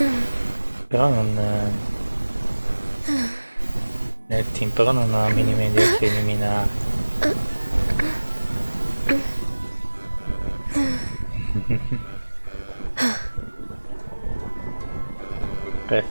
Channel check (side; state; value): both; inverted; correlation -1.00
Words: Però non... nel team, però non ho la minima idea che eliminare.